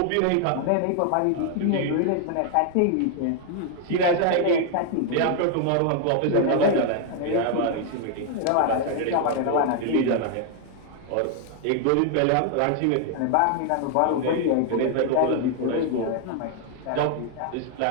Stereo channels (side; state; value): both; different; correlation 0.00